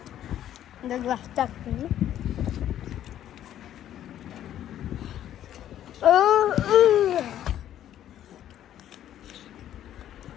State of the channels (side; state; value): right; quieter; 11.4 dB